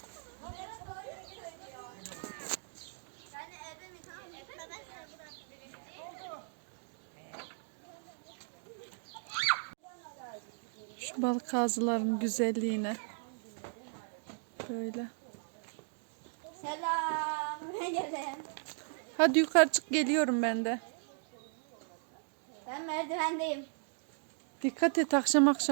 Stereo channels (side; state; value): left; silent; 54 dB below the other